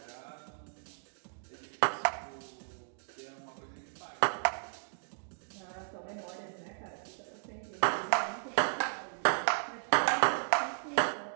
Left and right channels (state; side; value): silent; left; 54 dB below the other